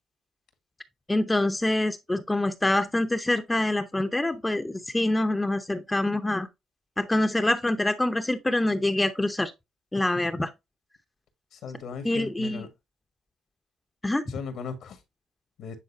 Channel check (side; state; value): both; normal; correlation 0.98